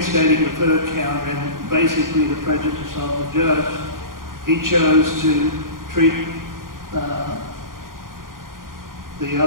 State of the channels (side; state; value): left; late; 0.90 ms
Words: the third count and basically the prejudice of the judge, he chose to treat the